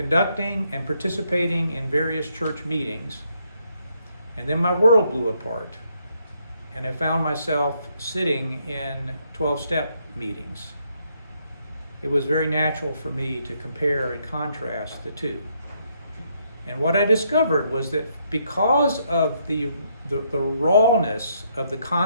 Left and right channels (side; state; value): both; inverted; correlation -0.73